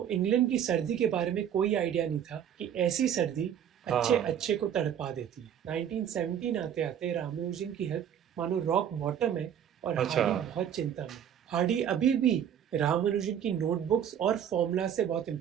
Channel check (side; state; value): left; quieter; 9.3 dB